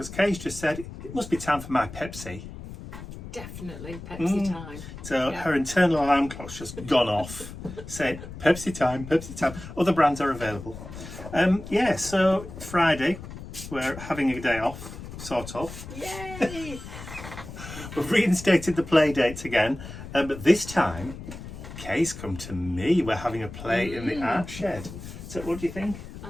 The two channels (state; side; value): noise; left; rumble, 12 dB below the sound